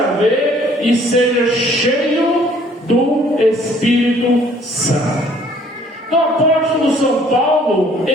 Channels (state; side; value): normal; both; correlation 0.58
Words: ver e seja cheio do Espírito Santo. Então, o apóstolo São Paulo,